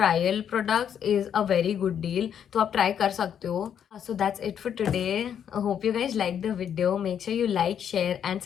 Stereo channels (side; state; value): right; quieter; 8.7 dB